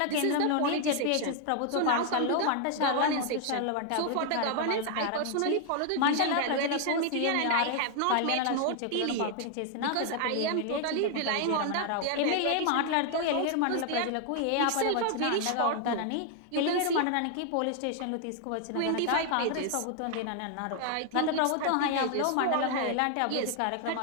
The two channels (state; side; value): different; both; correlation 0.00